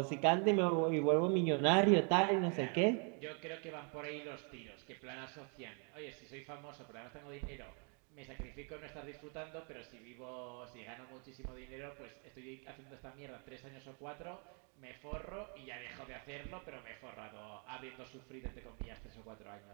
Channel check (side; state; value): left; quieter; 38.3 dB